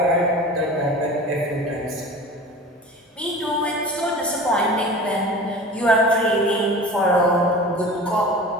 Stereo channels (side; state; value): both; normal; correlation 0.37